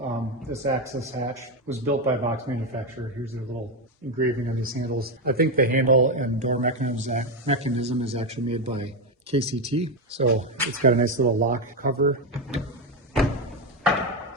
this access hatch was built by Box Manufacturer. Here's their little engraving on these handles. I think the handle and door mechanism is actually made by KCT. So it's got a nice little lock cover.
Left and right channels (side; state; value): both; normal; correlation 0.09